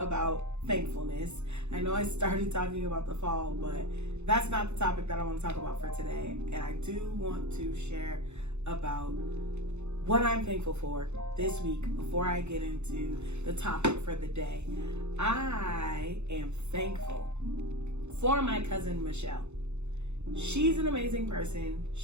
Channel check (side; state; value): left; late; 0.82 ms